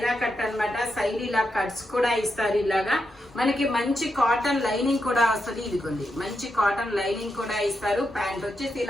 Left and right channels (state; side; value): normal; both; correlation 0.85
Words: cut అన్నమాట. సైడ్ ఇలా కట్స్ కూడా ఇస్తారు. ఇలాగా మనకి మంచి కాటన్ లైనింగ్ కూడా వస్తుంది. ఇదిగోండి, మంచి కాటన్ లైనింగ్ కూడా ఇస్తారు. ప్యాంట్ వచ్చేసి